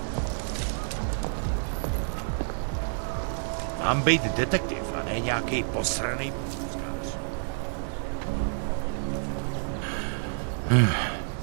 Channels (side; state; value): left; silent; 59 dB below the other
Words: Mám být detektiv a ne nějaký posranej pochůzkář.